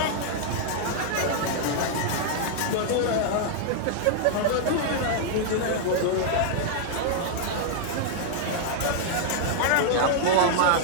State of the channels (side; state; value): both; different; correlation -0.01